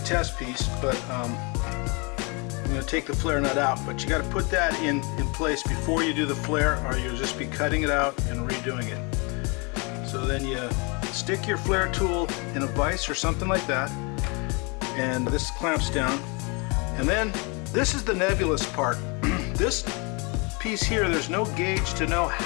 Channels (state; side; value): quieter; right; 30.8 dB